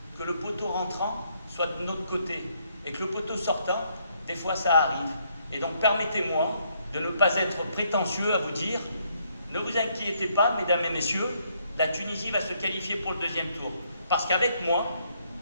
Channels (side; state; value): both; inverted; correlation -0.71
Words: que le poteau rentrant soit de notre côté et que le poteau sortant, des fois ça arrive. Et donc permettez-moi de ne pas être prétentieux à vous dire, ne vous inquiétez pas, mesdames et messieurs, la Tunisie va se qualifier pour le deuxième tour. Parce qu'avec moi,